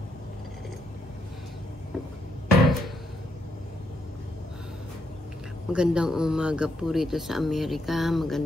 Magandang umaga po rito sa Amerika.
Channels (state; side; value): normal; both; correlation 0.77